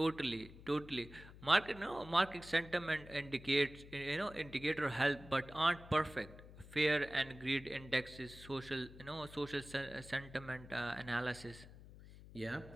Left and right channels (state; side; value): noise; left; hum, 17 dB below the sound